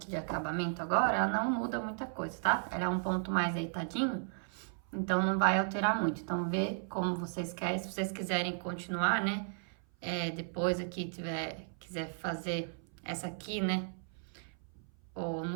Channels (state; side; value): silent; left; 54 dB below the other